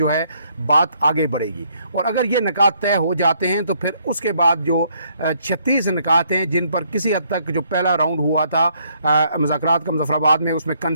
है बात आगे बढ़ेगी। और अगर ये निकात तय हो जाते हैं तो फिर उसके बाद जो 36 निकात हैं जिन पर किसी हद तक जो पहला राउंड हुआ था मुज़ाकरात का मुज़फ़्फ़राबाद में, उसमें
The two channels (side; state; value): both; inverted; correlation -0.69